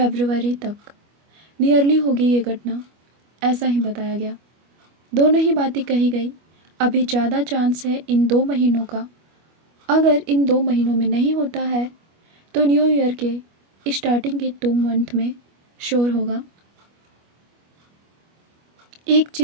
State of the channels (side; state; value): left; late; 25 ms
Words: तक नियरली होगी ये घटना, ऐसा ही बताया गया। दोनों ही बातें कही गई। अभी ज़्यादा चांस है इन 2 महीनों का। अगर इन 2 महीनों में नहीं होता है तो न्यू ईयर के स्टार्टिंग के 2 मंथ में श्योर होगा। एक